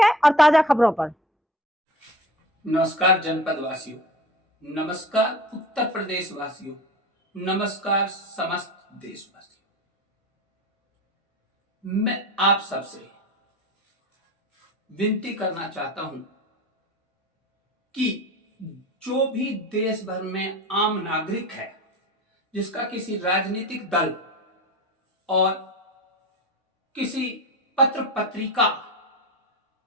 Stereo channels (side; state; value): both; normal; correlation 0.34